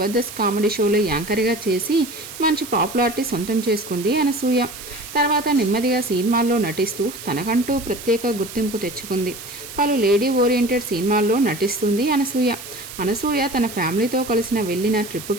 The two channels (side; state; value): right; noise; hiss, 13 dB below the sound